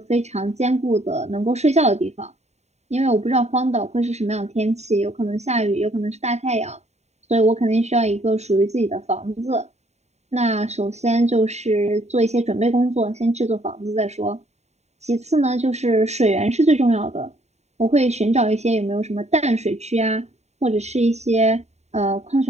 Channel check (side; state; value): left; late; 0.32 ms